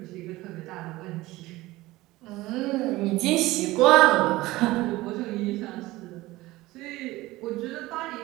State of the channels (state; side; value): quieter; left; 18.7 dB